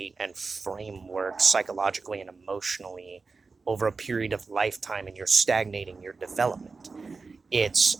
and framework psychologically and emotionally over a period of lifetime, and you're stagnating your development. It's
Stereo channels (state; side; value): quieter; left; 4.3 dB